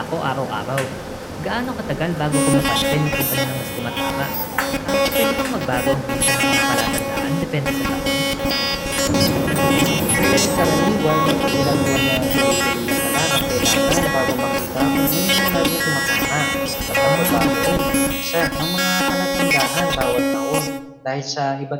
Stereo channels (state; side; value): identical; both; correlation 1.00